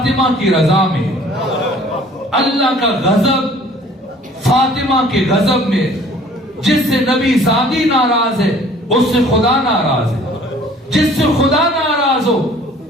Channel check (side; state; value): both; normal; correlation 0.52